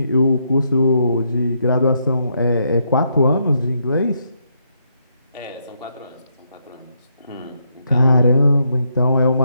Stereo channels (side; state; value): both; inverted; correlation -0.77